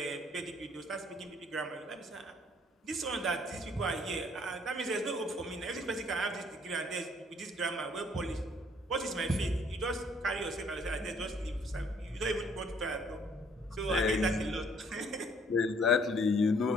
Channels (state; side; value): normal; both; correlation 0.62